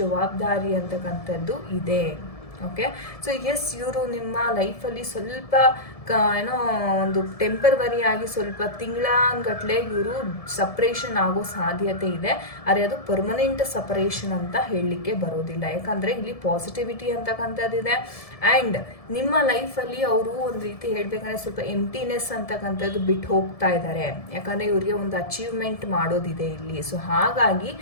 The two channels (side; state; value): right; late; 1.7 ms